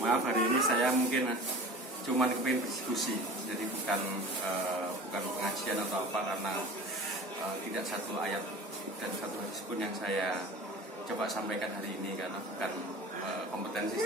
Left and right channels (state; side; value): normal; both; correlation 0.39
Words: hari ini saya mungkin cuma kepingin berdiskusi, jadi bukan pengajian atau apa, karena tidak satu ayat dan satu hadis pun yang saya coba sampaikan hari ini karena bukan kompetensi